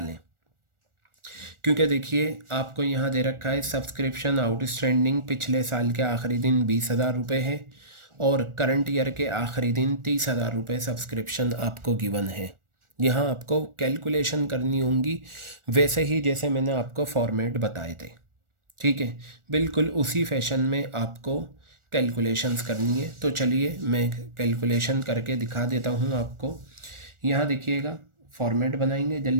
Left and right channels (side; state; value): left; late; 1.4 ms